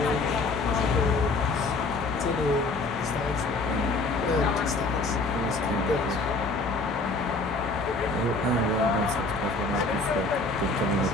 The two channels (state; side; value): quieter; right; 3.3 dB